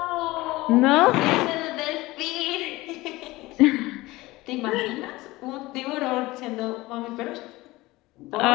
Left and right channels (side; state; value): right; quieter; 19.8 dB